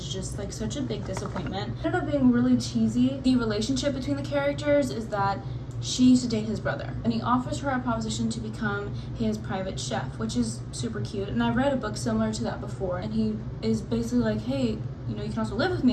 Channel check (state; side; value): identical; both; correlation 1.00